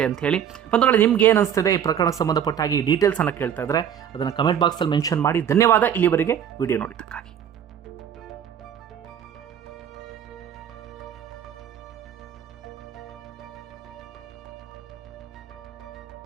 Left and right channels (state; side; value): quieter; left; 9.1 dB